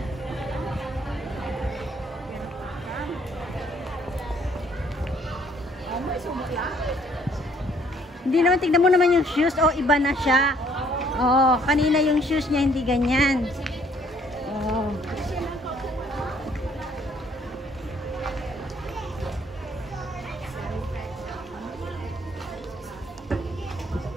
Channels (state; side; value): normal; both; correlation 0.63